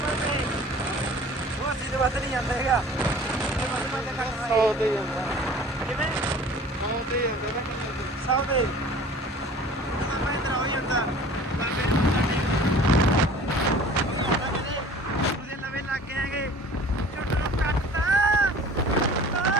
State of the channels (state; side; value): normal; both; correlation 0.46